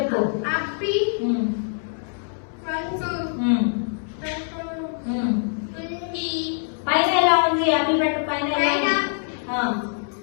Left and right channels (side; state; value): right; silent; 63 dB below the other